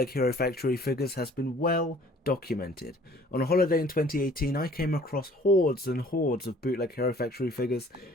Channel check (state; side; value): normal; both; correlation 0.54